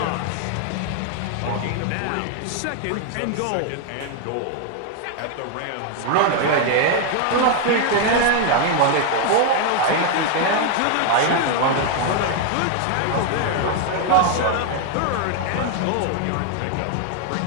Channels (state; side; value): different; both; correlation 0.00